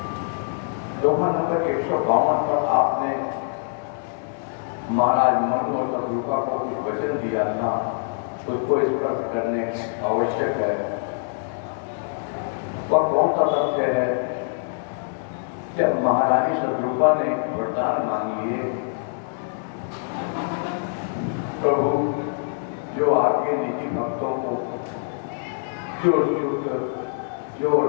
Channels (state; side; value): silent; right; digital silence